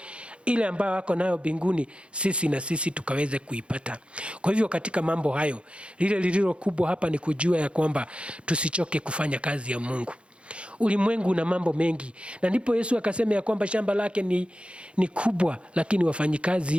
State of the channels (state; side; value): late; left; 0.058 ms